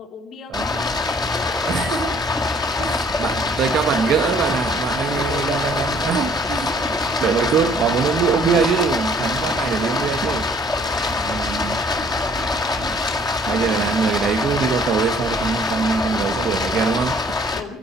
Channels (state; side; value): normal; both; correlation 0.59